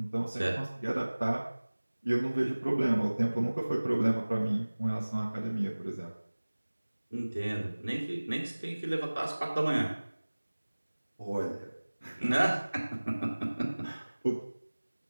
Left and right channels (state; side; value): inverted; both; correlation -1.00